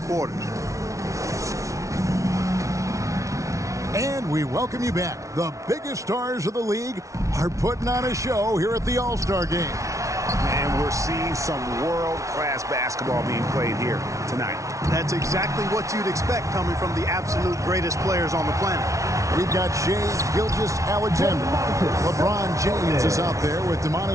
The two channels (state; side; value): late; left; 0.15 ms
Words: quarters. And we welcome you back. The biggest stars of the league are putting on a show here at the All-Star game. And we're seeing some world-class basketball being played here tonight. That's exactly what you'd expect coming from the absolute greatest players on the planet. We've got Shai Gilgeous-Alexander. LeBron James is out there with